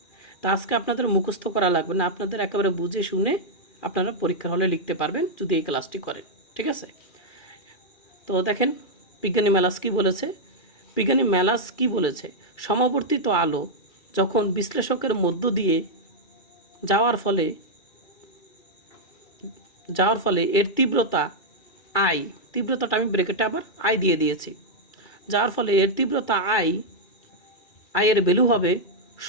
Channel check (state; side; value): late; right; 2.3 ms